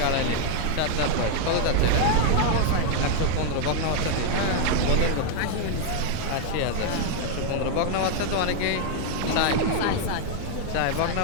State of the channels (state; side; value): different; both; correlation 0.00